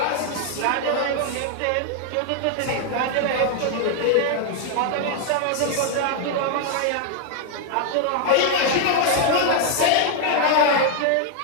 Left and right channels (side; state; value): both; different; correlation 0.00